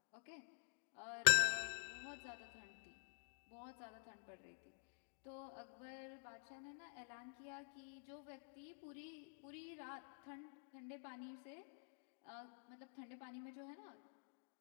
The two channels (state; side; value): silent; right; digital silence